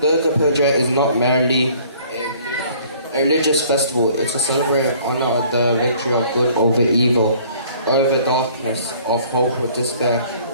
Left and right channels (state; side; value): inverted; both; correlation -0.56